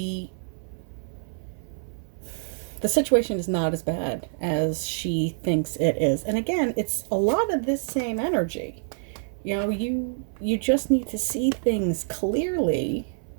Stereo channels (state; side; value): silent; left; 61 dB below the other